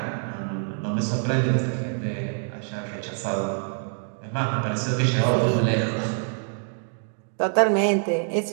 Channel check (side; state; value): left; silent; 61 dB below the other